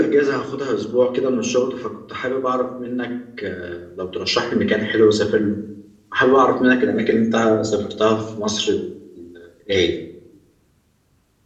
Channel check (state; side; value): identical; both; correlation 1.00